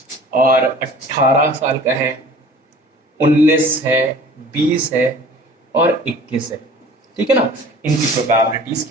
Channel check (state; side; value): normal; both; correlation 0.46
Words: और 18 साल का है, 19 है, 20 है, और 21 है. ठीक है ना. इनकी प्रोबेबिलिटीज